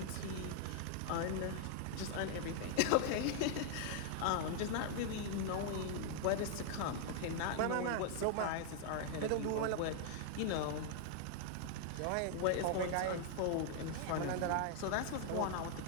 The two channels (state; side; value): different; both; correlation 0.00